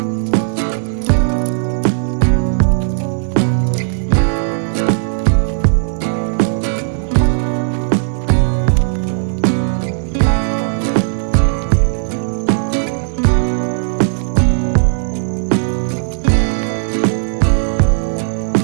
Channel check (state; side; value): silent; left; digital silence